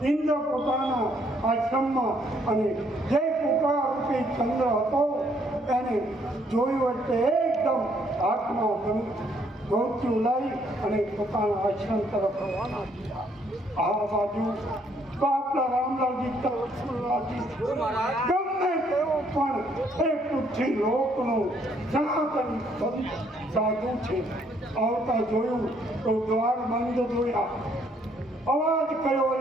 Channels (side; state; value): both; normal; correlation 0.68